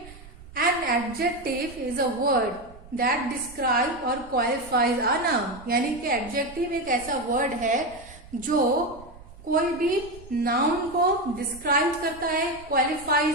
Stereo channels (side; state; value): right; noise; rumble, 19 dB below the sound